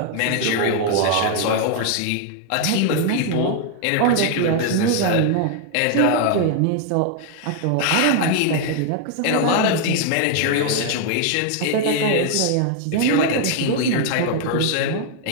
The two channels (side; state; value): both; different; correlation 0.00